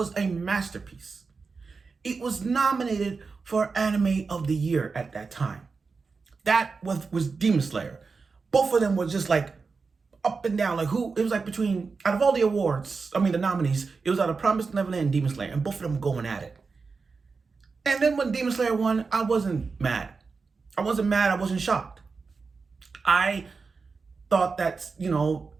a masterpiece. It was nominated for Anime of the Year at that time. That was Demon Slayer. Both of them were just like up and down. Like it was like between, out of all the awards, the nominees, it was out of Promised Neverland and Demon Slayer, and both of them were going at it. And then when Demon Slayer won, I wasn't mad. I wasn't shocked. I thought that,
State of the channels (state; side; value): quieter; left; 4.6 dB